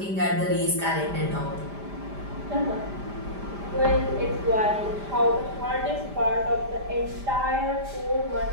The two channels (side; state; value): left; late; 5.0 ms